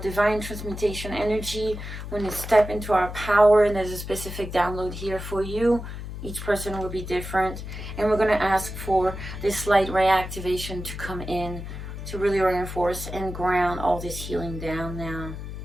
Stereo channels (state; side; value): noise; left; hum, 8 dB below the sound